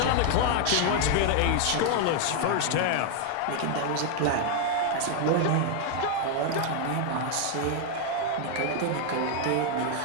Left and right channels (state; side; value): different; both; correlation 0.00